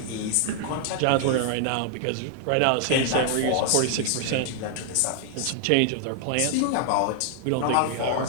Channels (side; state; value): both; different; correlation 0.00